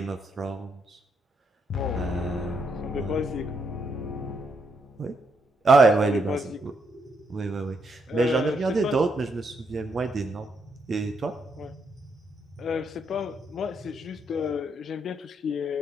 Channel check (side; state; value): both; normal; correlation 0.77